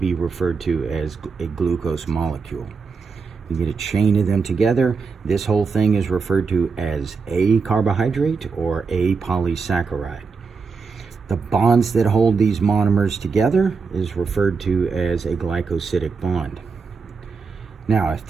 referred to as a glucose molecule. You get a chain of them together. This whole thing is referred to as a carbohydrate or a polysaccharide. The bonds that hold these monomers together is referred to as a glycosidic bond. Now, if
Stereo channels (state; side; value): quieter; left; 4.9 dB